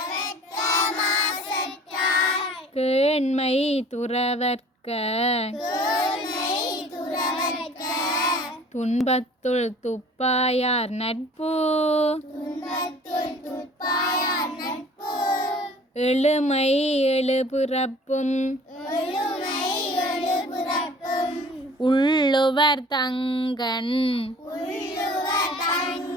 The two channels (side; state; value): both; normal; correlation 0.49